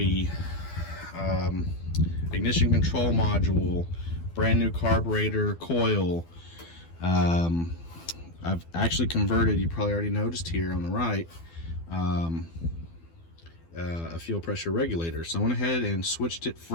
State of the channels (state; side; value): late; right; 12 ms